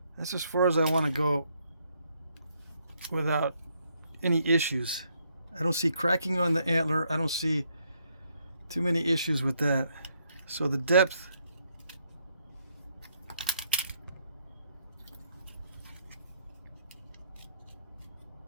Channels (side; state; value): both; inverted; correlation -0.73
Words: That's as far as I want to go without any issues. I don't see cracking on the antler. I don't see too many issues with that. So the depth